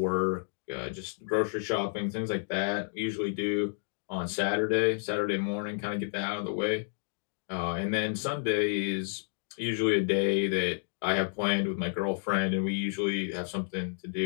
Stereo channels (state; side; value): silent; right; digital silence